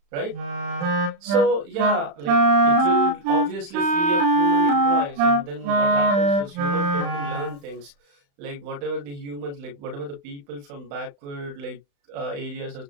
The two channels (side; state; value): left; late; 35 ms